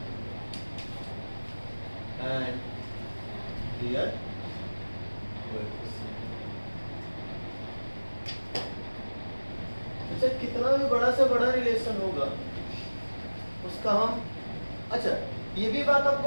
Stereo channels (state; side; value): inverted; both; correlation -1.00